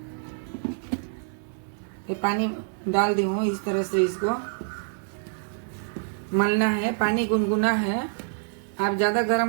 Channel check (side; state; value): left; silent; digital silence